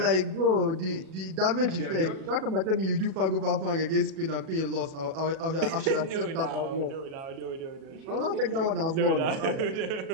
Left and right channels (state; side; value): late; left; 37 ms